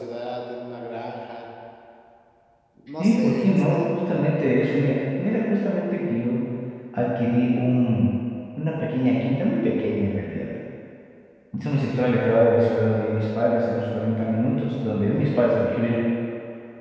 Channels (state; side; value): identical; both; correlation 1.00